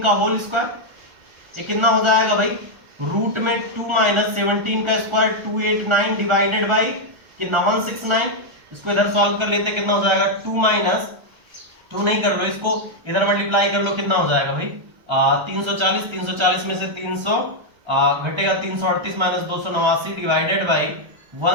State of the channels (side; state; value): left; late; 1.3 ms